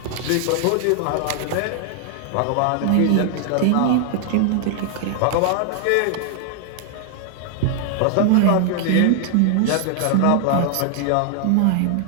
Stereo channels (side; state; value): both; different; correlation 0.00